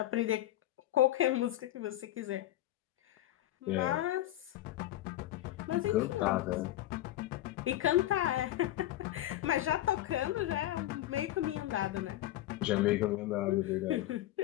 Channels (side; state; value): right; quieter; 14.2 dB